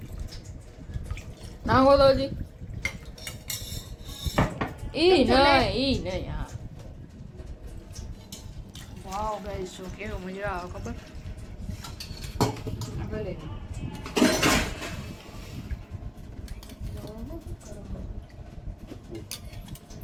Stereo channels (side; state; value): both; identical; correlation 1.00